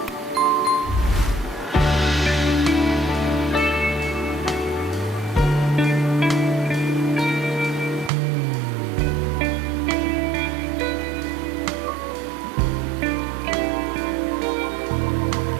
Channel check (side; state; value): left; drops out; at 8.1 s